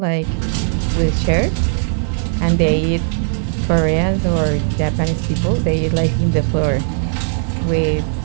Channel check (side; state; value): left; silent; 66 dB below the other